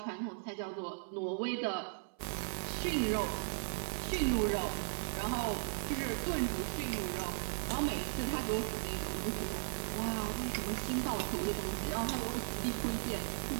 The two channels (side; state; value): left; silent; 53 dB below the other